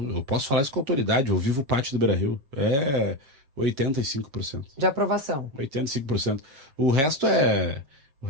posso falar isso com autoridade. Eu vivo o pátio do Beira-Rio. É 85%. De aprovação. 85%. O resto é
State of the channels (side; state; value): left; late; 7.4 ms